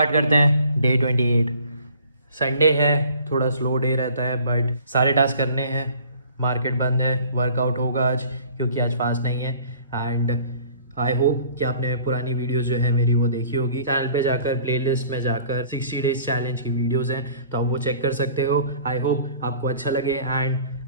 करते हैं डे 28। संडे है, थोड़ा स्लो डे रहता है बट सारे टास्क करने हैं। मार्केट बंद है, वर्कआउट होगा आज क्योंकि आज फास्ट नहीं है। एंड आई होप कि आपने पुरानी वीडियोस जो है मेरी वो देखी होगी। चैनल पे जाकर प्लेलिस्ट में जाकर 60 डेज चैलेंज की वीडियोस हैं, तो आप वो चेक कर सकते हो। आई होप आपको अच्छा लगे एंड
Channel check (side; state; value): both; inverted; correlation -0.51